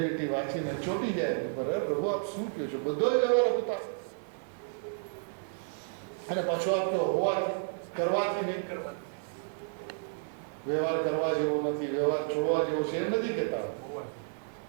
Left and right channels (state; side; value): silent; left; digital silence